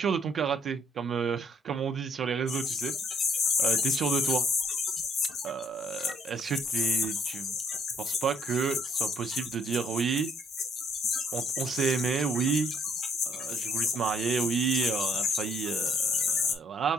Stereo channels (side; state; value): both; normal; correlation 0.66